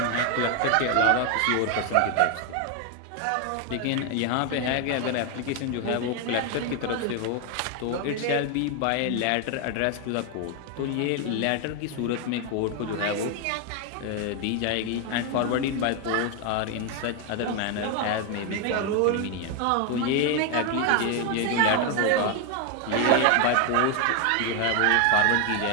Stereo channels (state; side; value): different; both; correlation 0.01